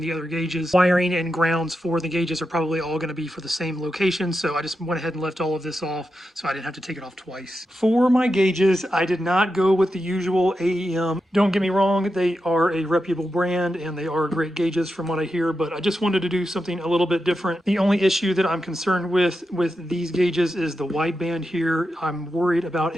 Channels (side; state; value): both; normal; correlation 0.88